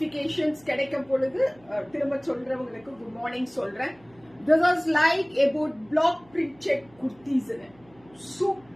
கிடைக்கும் பொழுது திரும்ப சொல்றவங்களுக்கு good morning சொல்றேன். This is like about block printed kurtis.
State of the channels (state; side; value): noise; right; hum, 29 dB below the sound